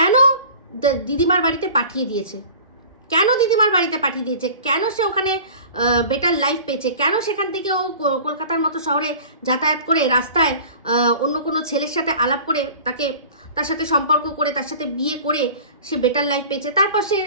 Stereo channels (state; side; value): inverted; both; correlation -0.42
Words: দিদিমার বাড়িতে পাঠিয়ে দিয়েছে? কেন সে ওখানে বেটার লাইফ পেয়েছে? কেন সেখান থেকে ও কলকাতার মতো শহরে যাতায়াত করে রাস্তায় অন্য কোনো ছেলের সাথে আলাপ করে তার সাথে সম্পর্ক করে তার সাথে বিয়ে করে সে বেটার লাইফ পেয়েছে? তারপর সে